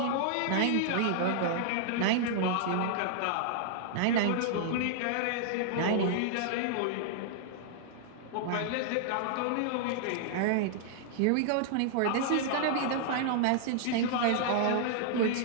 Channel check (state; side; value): different; both; correlation -0.01